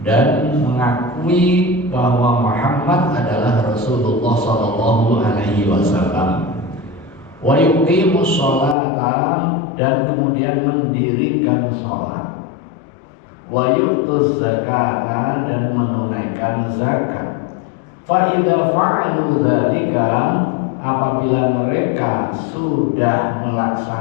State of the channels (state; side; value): drops out; right; at 8.8 s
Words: dan mengakui bahwa Muhammad adalah Rasulullah sallallahu alaihi wasallam. Wa yuqimus sholata, dan kemudian mendirikan sholat. Wa yu'tuz zakata, dan menunaikan zakat. Fa idza fa'alu dzalika, apabila mereka sudah